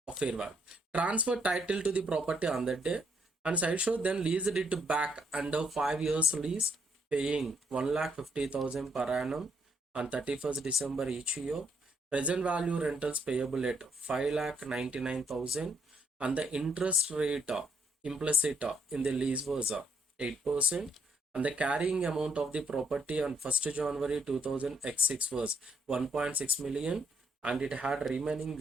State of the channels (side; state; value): both; normal; correlation 0.73